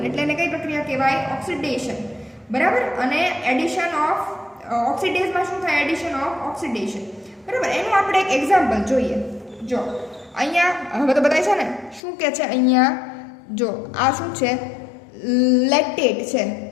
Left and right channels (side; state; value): right; drops out; at 12.0 s